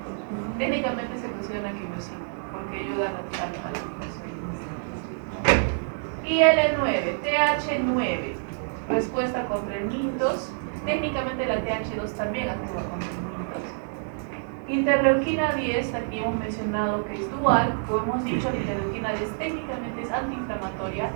Técnicamente se considera una quimiosina porque ayuda a la infección. IL-9, TH9, respuesta contra el mintos. Técnicamente la TH2 también actúa contra el mintos. Interleuquina 10, aquí hemos mencionado que es dual. Como hemos dicho, la interleuquina 10 técnicamente es antiinflamatoria,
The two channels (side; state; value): left; silent; digital silence